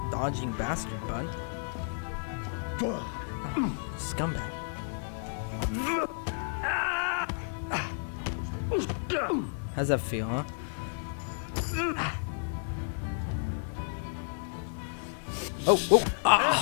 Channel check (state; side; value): silent; right; 57 dB below the other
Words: Dodging bastard, bud. Scumbag. How's that feel, huh?